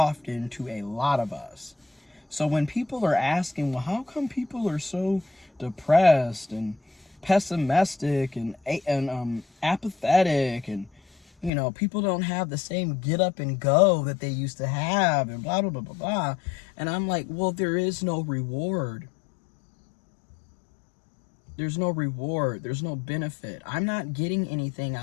to a lot of us. So when people are asking, well, how come people are so depressed and pessimistic and apathetic, and people don't have the same get up and go that they used to have, and blah blah blah blah blah, and I'm like, well, there is no reward. There's no reward. There's no benefit. I'm not getting anything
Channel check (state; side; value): drops out; right; at 11.5 s